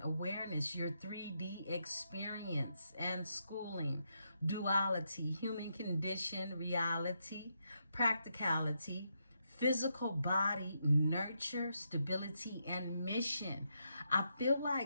awareness, your 3D experience and schooling, duality, human condition, reality, practicality, physical body, nurture, stability, and mission. I feel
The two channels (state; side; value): inverted; both; correlation -0.81